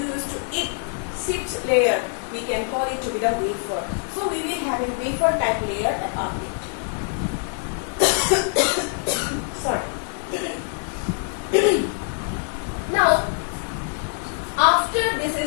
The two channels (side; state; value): right; silent; 55 dB below the other